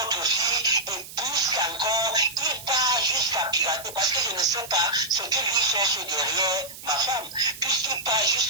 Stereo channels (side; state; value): right; noise; hiss, 14 dB below the sound